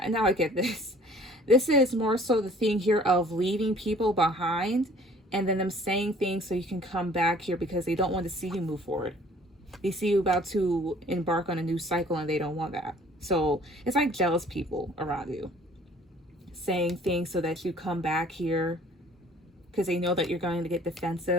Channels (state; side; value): normal; both; correlation 0.53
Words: now I get this. This is more so the thing here of leaving people behind and then them saying things so you can come back here because they don't want to see you move forward. They see you about to embark on a new cycle and they don't want that. So it's like jealous people around you saying things so that you come back here because they know that you're going to get